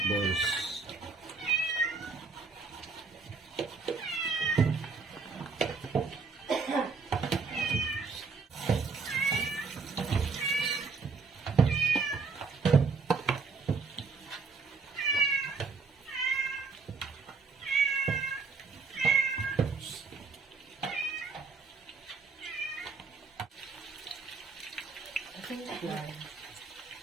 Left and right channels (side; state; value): left; quieter; 4.7 dB